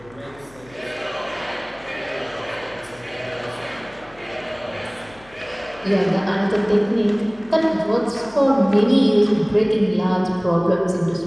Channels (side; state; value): left; noise; hum, 25 dB below the sound